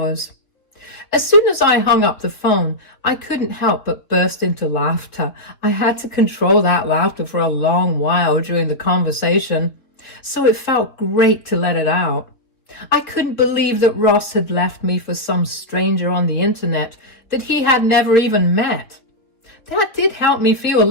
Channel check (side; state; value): right; late; 3.5 ms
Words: As soon as I hung up the phone, I couldn't help but burst into laughter. I had to control that laughter for a long while during the conversation, so it felt great to let it out. I couldn't believe that Ross had left me for some stranger on the internet that he had never even met. That did help me feel a